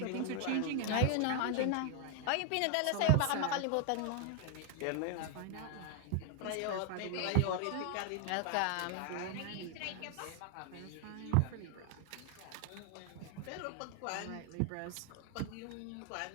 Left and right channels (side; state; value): both; different; correlation 0.00